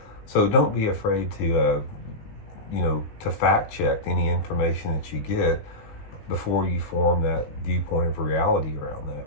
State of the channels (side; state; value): right; late; 19 ms